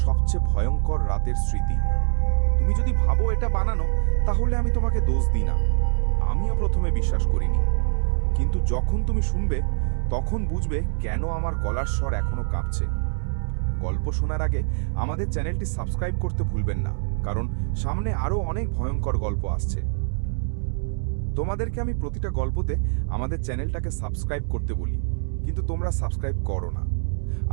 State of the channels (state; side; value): silent; left; digital silence